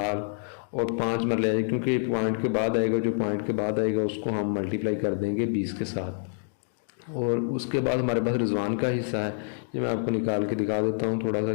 और 5 मरले आएगा क्योंकि पॉइंट के बाद आएगा। जो पॉइंट के बाद आएगा उसको हम मल्टीप्लाई कर देंगे 20 के साथ। और उसके बाद हमारे पास रिजवान का हिस्सा है। ये मैं आपको निकाल के दिखा देता हूँ थोड़ा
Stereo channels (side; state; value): right; silent; digital silence